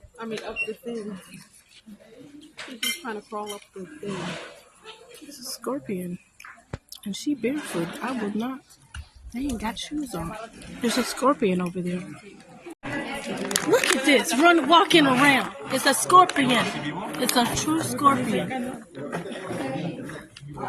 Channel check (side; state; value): both; identical; correlation 1.00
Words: Up the thing. She's just trying to crawl up the thing. It's a scorpion. And she barefoot. I would not. They ain't got shoes on. There's a scorpion over there. Look at this. Walking around. It's a scorpion. It's a true scorpion.